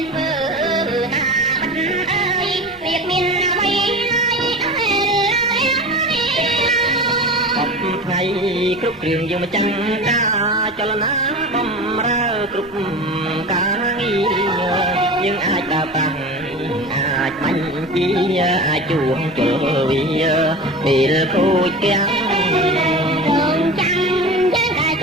នធ្វើណាបាត់អើយវាមានអ្វីថ្ងៃគ្រប់គ្រឿងយើងមកចាំការចលនាបំរើគ្រប់ការងារយើងអាចដើរតាំងអាចបាញ់ពីអាចជួងជលវាពេលគូចទាំងរងចាំយើងតែ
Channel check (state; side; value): normal; both; correlation 0.32